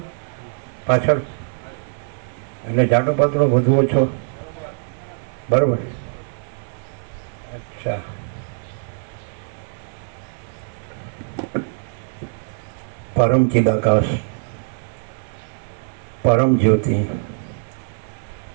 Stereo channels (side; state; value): left; silent; 64 dB below the other